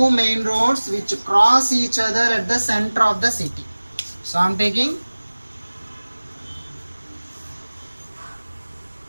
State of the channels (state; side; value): inverted; both; correlation -1.00